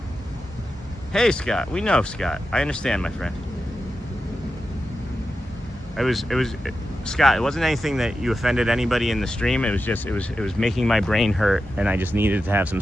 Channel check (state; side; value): normal; both; correlation 0.90